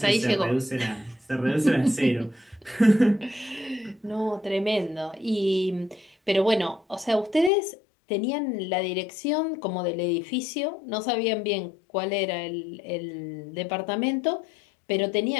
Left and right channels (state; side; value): drops out; right; at 7.5 s